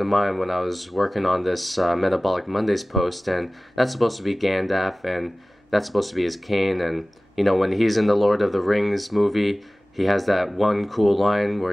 mind when I was working on this Metabolic Mondays post, and that's supposed to be Gandalf, and that's supposed to be his cane, and you know, when he's in the Lord of the Rings movie, he has that one cool line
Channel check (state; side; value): normal; both; correlation 0.98